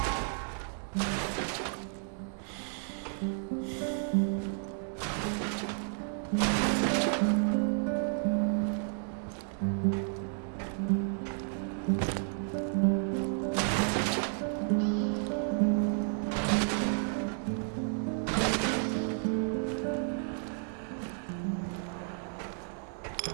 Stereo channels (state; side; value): silent; left; 56 dB below the other